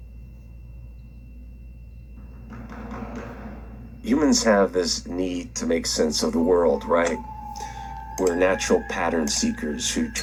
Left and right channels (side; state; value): both; identical; correlation 1.00